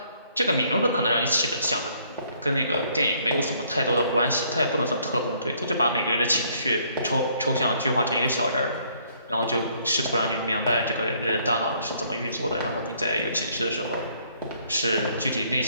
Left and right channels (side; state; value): both; inverted; correlation -0.65